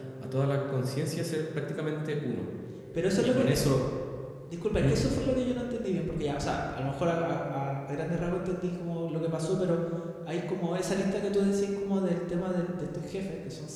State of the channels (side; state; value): both; identical; correlation 1.00